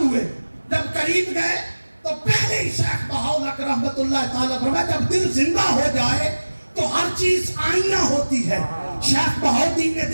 ہوئے. جب قریب گئے تو پہلے ہی شیخ بہاؤالحق رحمت اللہ تعالیٰ فرمایا جب دل زندہ ہو جائے تو ہر چیز آئینہ ہوتی ہے. شیخ بہاؤالدین نے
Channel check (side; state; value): both; inverted; correlation -1.00